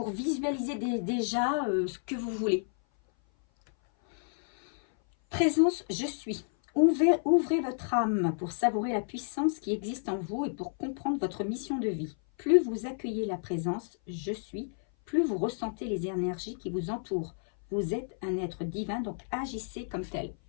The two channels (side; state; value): right; silent; 56 dB below the other